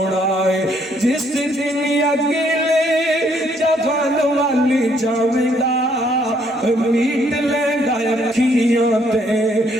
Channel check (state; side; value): normal; both; correlation 0.68